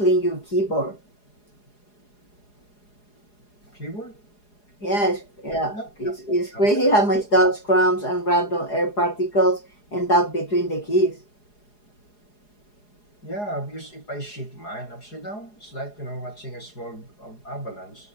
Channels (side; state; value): right; late; 4.8 ms